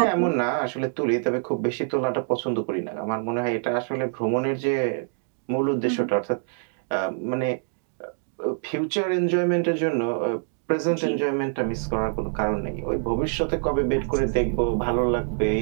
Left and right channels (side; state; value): left; silent; digital silence